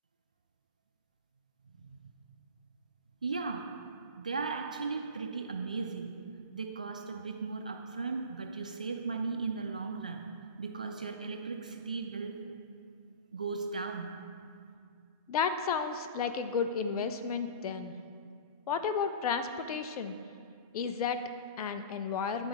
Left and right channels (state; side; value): inverted; both; correlation -0.32